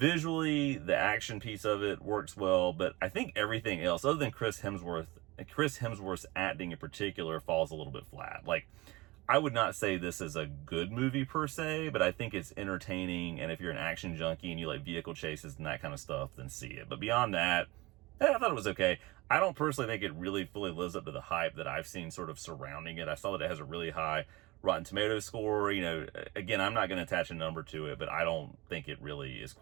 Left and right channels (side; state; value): left; quieter; 21.9 dB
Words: the action piece of it works well, but I think everything else, other than Chris Hemsworth's acting in particular, falls a little bit flat. Like, I would not say this is a good movie per se, but I think it's entertaining, and if you're an action junkie and you like vehicle chases and that kind of stuff, then see it. But beyond that, I thought it was okay. I don't personally think it really fully lives up to the hype that I've seen sort of surrounding it. I saw that it has a really high Rotten Tomatoes score. Again, I'm not going to attach a number to it, but I don't think it really is